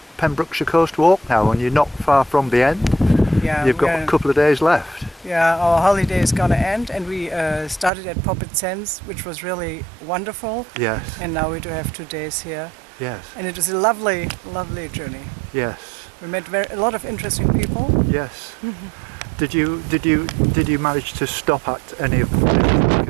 Pembrokeshire Coast Walk now, and you're not far from the end. Yeah, You've got a couple of days left. Yeah, our holiday is gonna end, and we started at Poppet Sands, which was really wonderful. Yes. And now we do have 2 days here. Yes. And it was a lovely, lovely journey. Yes. We met a lot of interesting people. Yes. Did you manage to stop at any of them? Like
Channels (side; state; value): left; drops out; at 7.9 s